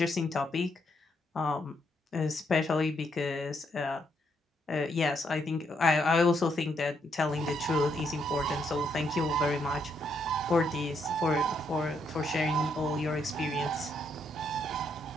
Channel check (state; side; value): normal; both; correlation 0.76